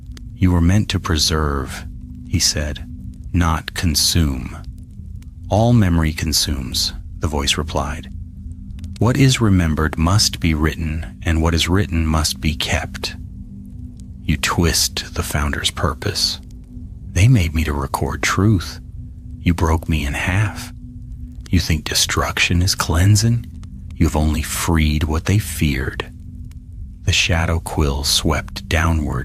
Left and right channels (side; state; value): both; identical; correlation 1.00